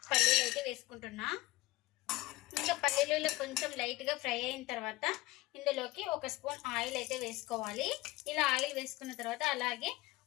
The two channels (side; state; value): right; quieter; 19.5 dB